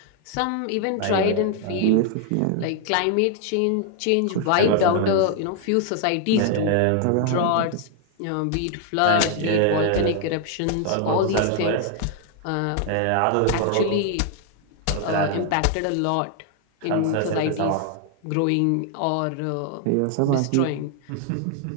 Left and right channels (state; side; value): different; both; correlation 0.00